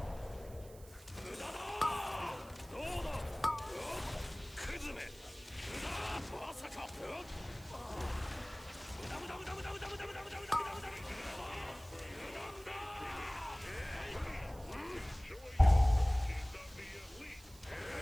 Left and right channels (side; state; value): right; noise; hiss, 21 dB below the sound